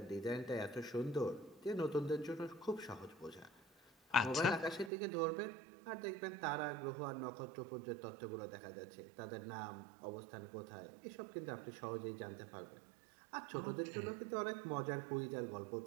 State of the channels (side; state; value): left; drops out; at 4.9 s